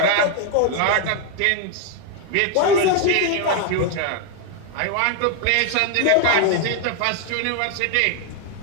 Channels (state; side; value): different; both; correlation 0.01